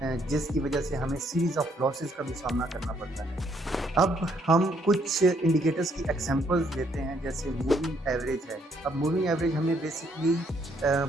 जिसकी वजह से हमें सीरीज़ ऑफ लॉसेस का भी सामना करना पड़ता है। अब हम कुछ इंडिकेटर्स की एग्जांपल्स लेते हैं, जैसे मूविंग एवरेज है। अब मूविंग एवरेज हमें बेसिकली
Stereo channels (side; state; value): both; normal; correlation 0.69